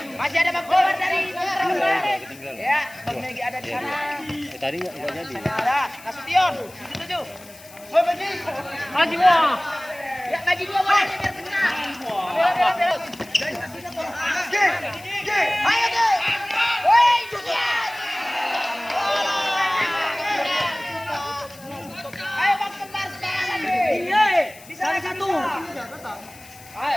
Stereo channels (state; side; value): noise; left; hiss, 21 dB below the sound